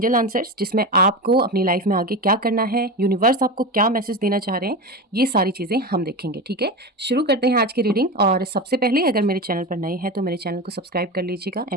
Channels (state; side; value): normal; both; correlation 0.22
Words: आंसर्स, जिसमें आपको अपनी लाइफ में आगे क्या करना है, यूनिवर्स आपको क्या मैसेज देना चाह रहे हैं, ये सारी चीज़ें हम देखेंगे। ठीक है, शुरू करते हैं आज की रीडिंग। और सबसे पहले अगर मेरे चैनल पर नए हैं तो मेरे चैनल को सब्सक्राइब कर लीजिएगा